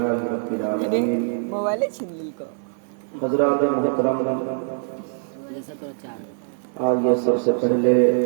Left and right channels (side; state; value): left; silent; digital silence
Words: رب العالمين۔ حضرات محترم، آئیے سب سے پہلے